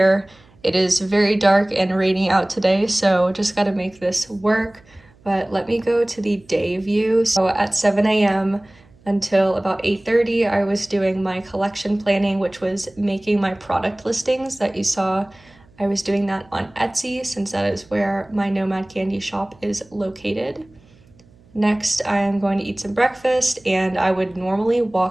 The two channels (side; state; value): right; noise; hum, 29 dB below the sound